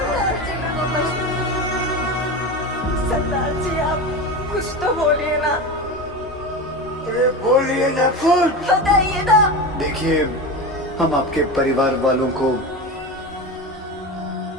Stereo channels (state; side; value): normal; both; correlation 0.24